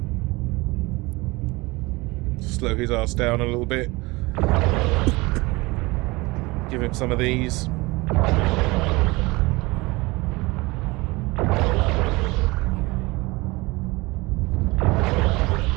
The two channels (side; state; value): left; quieter; 23.1 dB